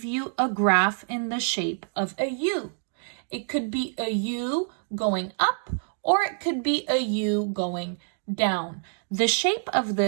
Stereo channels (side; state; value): left; silent; digital silence